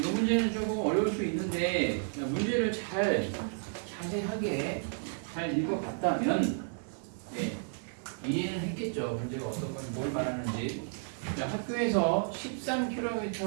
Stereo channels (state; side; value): silent; left; 56 dB below the other